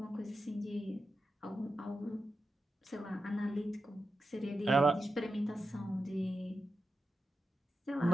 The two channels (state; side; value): normal; both; correlation 0.89